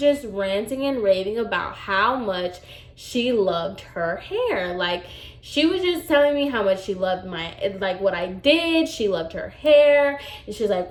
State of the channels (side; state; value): both; identical; correlation 1.00